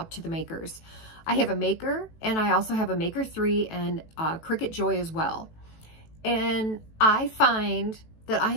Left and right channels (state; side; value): late; right; 18 ms